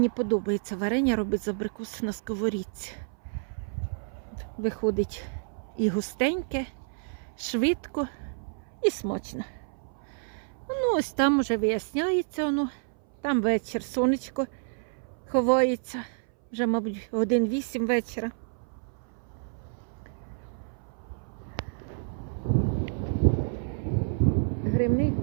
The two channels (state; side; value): silent; left; 58 dB below the other